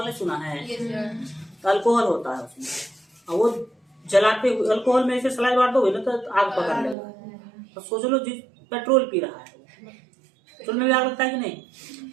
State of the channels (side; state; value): left; drops out; at 7.0 s